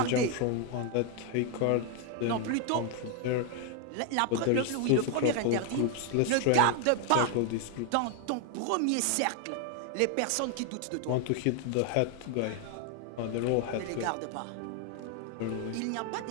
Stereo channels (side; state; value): both; different; correlation 0.01